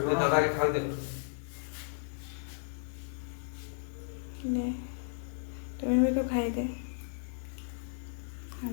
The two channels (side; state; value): right; silent; digital silence